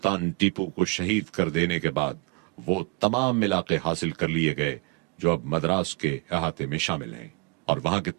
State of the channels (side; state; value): left; quieter; 28.9 dB